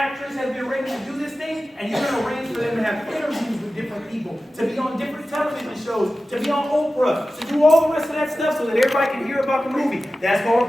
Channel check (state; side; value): normal; both; correlation 0.95